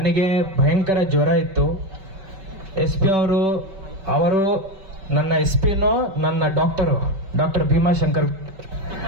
ಭಯಂಕರ ಜ್ವರ ಇತ್ತು. SP ಅವರು ನನ್ನ SPನೂ ನನ್ನ ಡಾಕ್ಟರ್ ಭೀಮಾಶಂಕರ್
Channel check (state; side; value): late; left; 5.2 ms